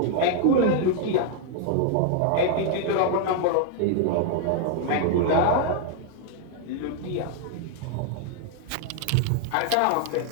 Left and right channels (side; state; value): both; different; correlation 0.00